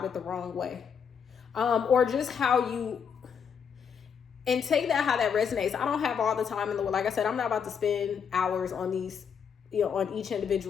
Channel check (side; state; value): right; quieter; 7.0 dB